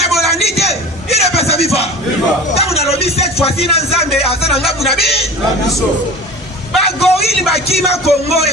Bolandi te, il est pas sa viva. Tant on a lobby cette fois-ci na Nzambe asana ngabu na biso. Ba gorille ba kima Congo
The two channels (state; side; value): normal; both; correlation 0.36